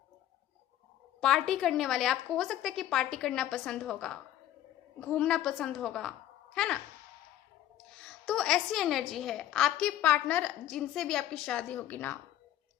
पार्टी करने वाले। आपको हो सकता है कि पार्टी करना पसंद होगा, घूमना पसंद होगा, है ना। तो ऐसी एनर्जी है। आपके पार्टनर जिनसे भी आपकी शादी होगी ना,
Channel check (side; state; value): right; quieter; 12.5 dB